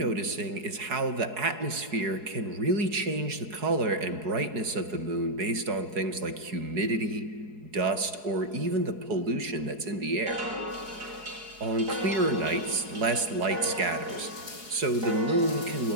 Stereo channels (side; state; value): left; late; 4.7 ms